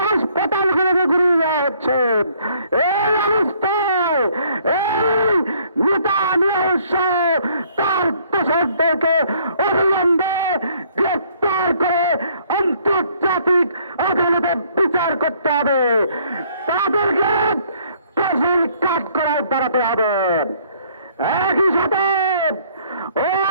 হাসপাতালগুলোকে ঘুরিয়ে দেওয়া হচ্ছে। এই অবস্থায় এই নেতানিয়াহু সহ তার দোসরদেরকে অবিলম্বে গ্রেপ্তার করে আন্তর্জাতিক আদালতে বিচার করতে হবে। তাদেরকে ফাঁসির কাঠগড়ায় দাঁড়াতে হবে। একই সাথে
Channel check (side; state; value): both; inverted; correlation -0.63